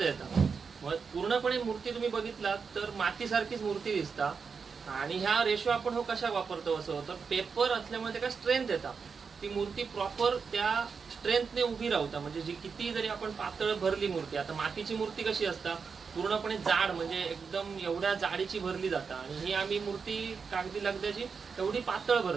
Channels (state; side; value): quieter; left; 5.6 dB